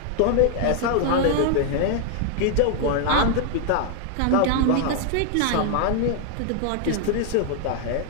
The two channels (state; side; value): different; both; correlation 0.00